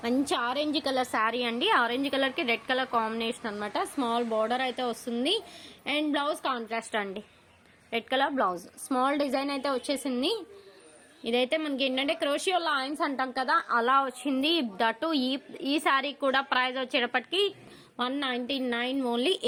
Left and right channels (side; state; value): both; identical; correlation 1.00